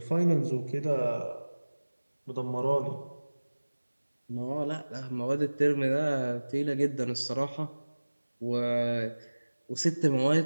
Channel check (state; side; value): inverted; both; correlation -1.00